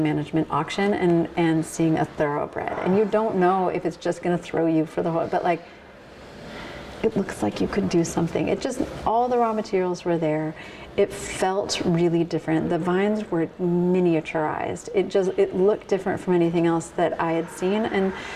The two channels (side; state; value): both; identical; correlation 1.00